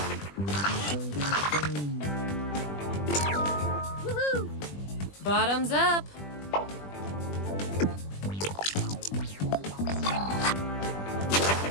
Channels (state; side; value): late; right; 20 ms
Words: Woohoo! Bottoms up.